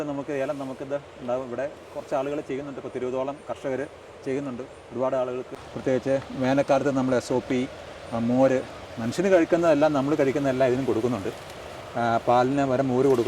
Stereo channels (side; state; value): both; identical; correlation 1.00